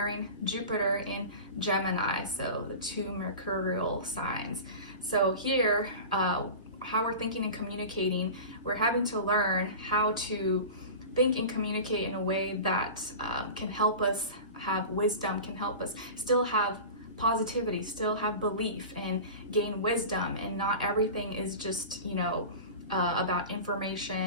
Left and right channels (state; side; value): inverted; both; correlation -0.33